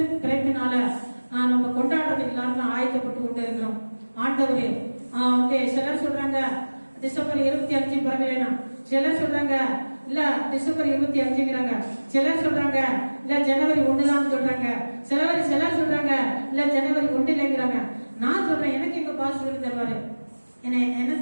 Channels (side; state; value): both; inverted; correlation -1.00